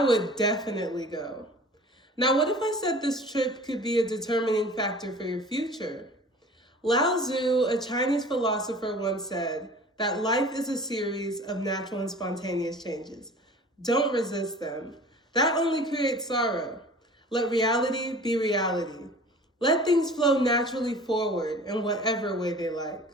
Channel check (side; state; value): both; normal; correlation 0.44